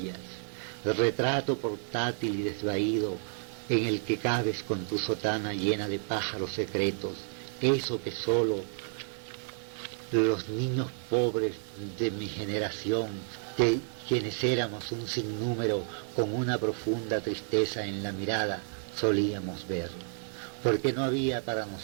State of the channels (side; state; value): left; silent; 57 dB below the other